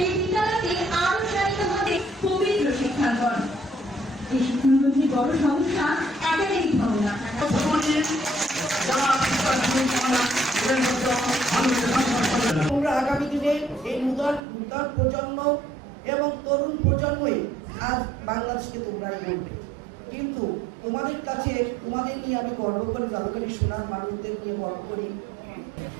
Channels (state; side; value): drops out; left; at 14.4 s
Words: এই বিদ্যালয়তে আরো চালিত হবে পবিত্র শিক্ষাঙ্গন। এই শিক্ষাঙ্গনের বড় সমস্যা একাডেমিক ভবনা। তোমরা আগামী দিনে এই নূতন প্রজন্ম এবং তরুণ প্রজন্মই আজ বাংলাদেশকে তোমরাই বলবে, কিন্তু তোমাদের কাছে তোমাদের নিয়ে আমি গর্ব করি, জাদুকারী সোনার মানুষদের নিয়ে গর্ব করি।